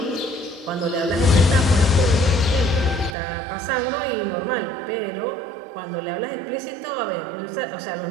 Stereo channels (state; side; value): drops out; left; at 3.2 s